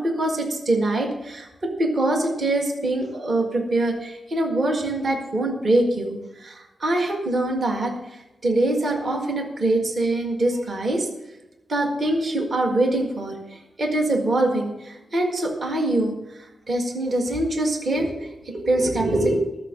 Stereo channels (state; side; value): normal; both; correlation 0.81